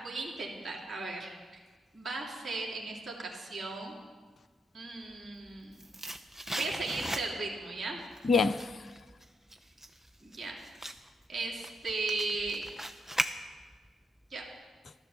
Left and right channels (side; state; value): both; normal; correlation 0.78